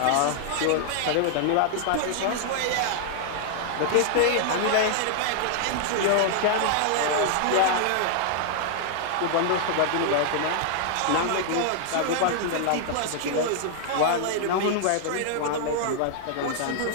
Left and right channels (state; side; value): different; both; correlation -0.01